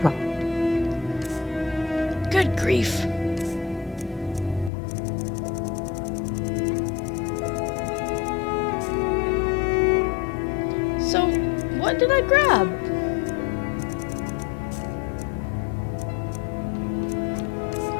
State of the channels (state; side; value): drops out; right; at 4.7 s